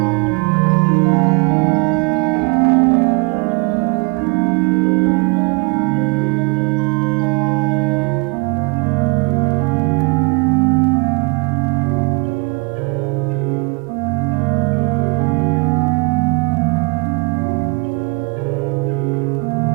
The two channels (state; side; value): quieter; left; 31.1 dB